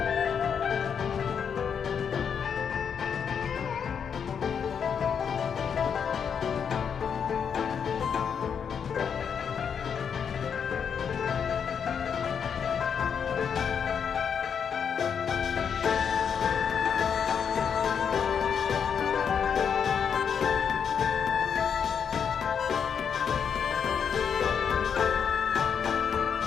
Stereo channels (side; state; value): right; quieter; 7.2 dB